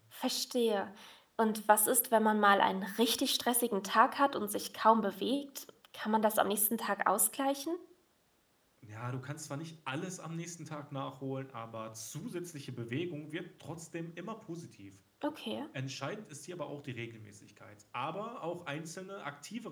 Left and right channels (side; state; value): both; identical; correlation 1.00